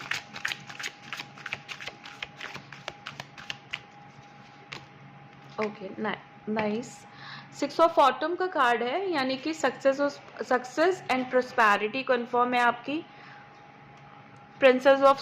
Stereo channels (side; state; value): both; identical; correlation 1.00